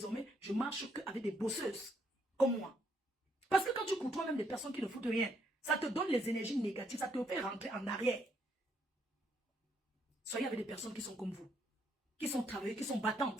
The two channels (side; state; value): both; normal; correlation 0.72